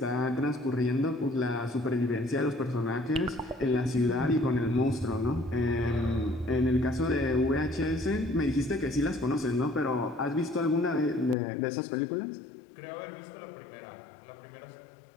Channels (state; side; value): drops out; right; at 11.4 s